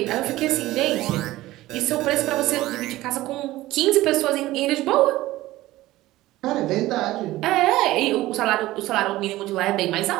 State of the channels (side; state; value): left; quieter; 16.9 dB